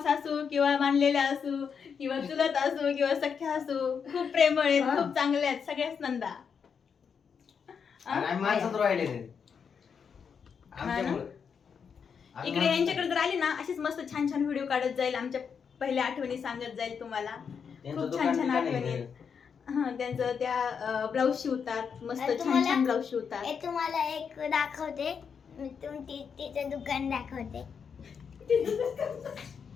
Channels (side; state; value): right; quieter; 6.6 dB